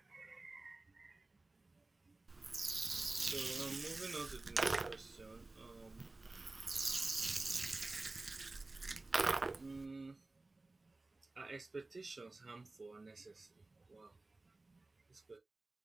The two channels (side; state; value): left; quieter; 3.2 dB